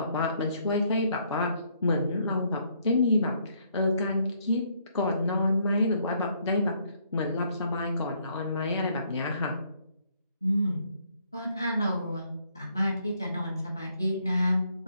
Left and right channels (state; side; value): inverted; both; correlation -0.69